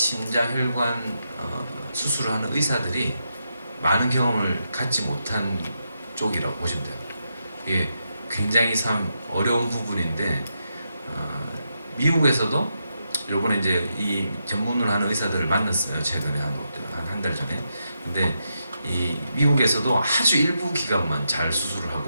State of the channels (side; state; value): both; inverted; correlation -0.84